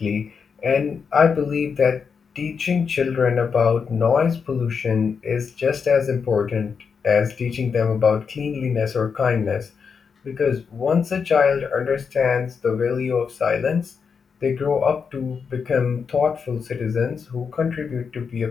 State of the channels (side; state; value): right; quieter; 6.0 dB